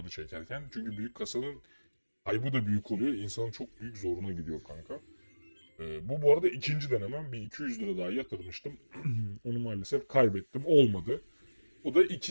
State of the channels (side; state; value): both; inverted; correlation -1.00